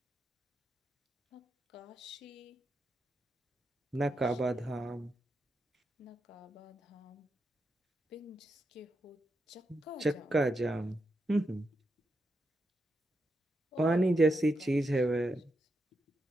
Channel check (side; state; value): both; normal; correlation 0.84